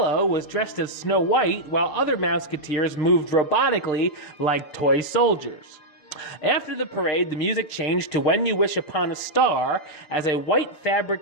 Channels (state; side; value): late; right; 6.8 ms